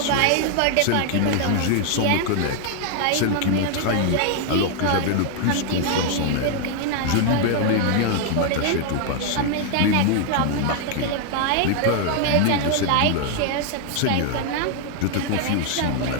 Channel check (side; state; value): both; different; correlation 0.00